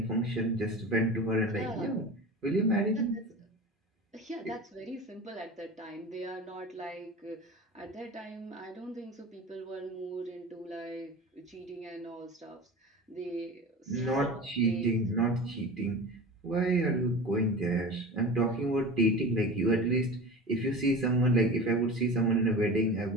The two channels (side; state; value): both; normal; correlation 0.32